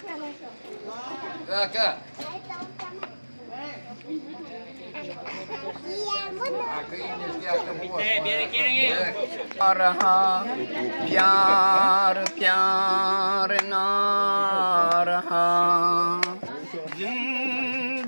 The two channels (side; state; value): both; inverted; correlation -1.00